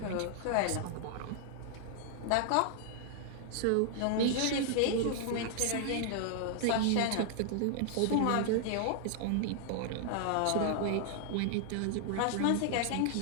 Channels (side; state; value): both; different; correlation 0.00